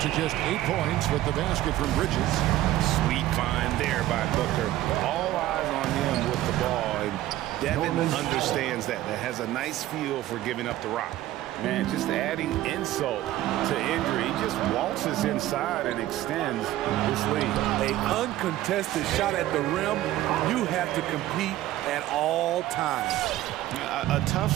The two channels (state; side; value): quieter; left; 14.7 dB